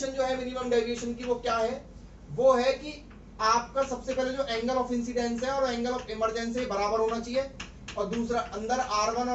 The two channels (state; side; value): identical; both; correlation 1.00